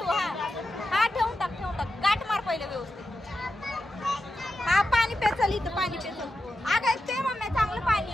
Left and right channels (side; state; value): both; normal; correlation 0.90